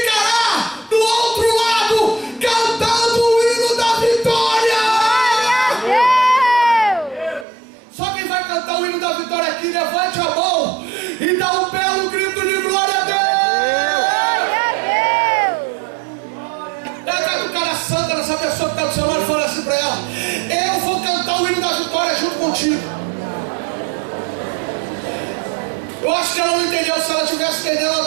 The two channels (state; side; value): drops out; left; at 7.5 s